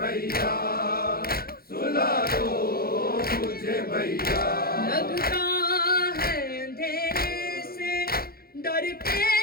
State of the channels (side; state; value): right; late; 0.44 ms